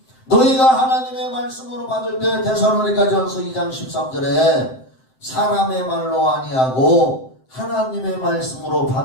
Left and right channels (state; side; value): late; right; 7.7 ms